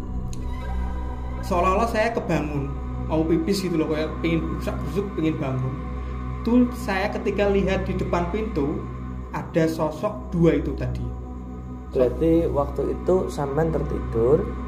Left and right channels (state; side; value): identical; both; correlation 1.00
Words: Seolah-olah saya kebangun, mau pipis gitu loh, kayak pengen busuk pengen bangun. Tuh saya ketika lihat di depan pintu ada sosok dua itu tadi. Berarti waktu itu sampean tertidur,